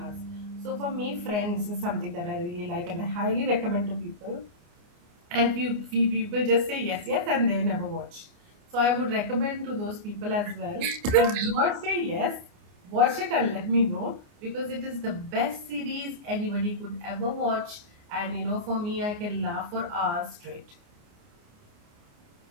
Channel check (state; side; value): late; left; 29 ms